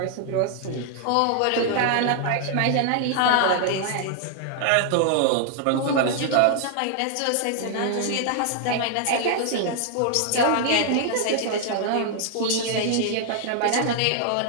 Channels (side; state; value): both; different; correlation 0.00